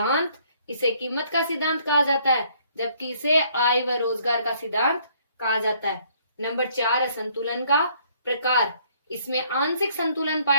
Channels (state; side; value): inverted; both; correlation -0.64